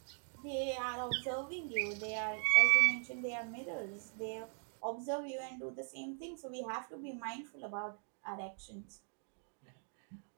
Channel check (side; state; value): left; silent; 51 dB below the other